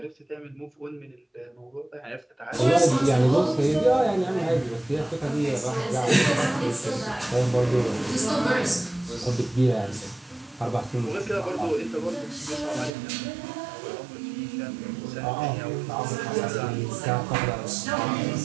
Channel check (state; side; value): drops out; left; at 12.9 s